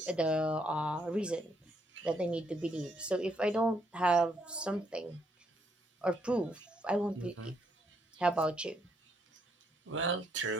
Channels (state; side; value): normal; both; correlation 0.74